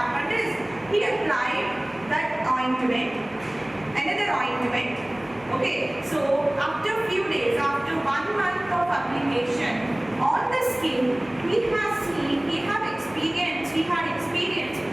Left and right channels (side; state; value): left; noise; hum, 24 dB below the sound